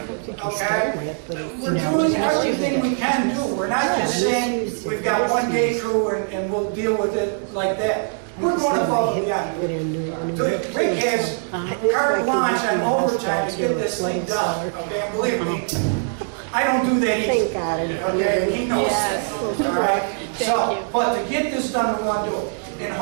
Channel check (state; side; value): silent; left; 61 dB below the other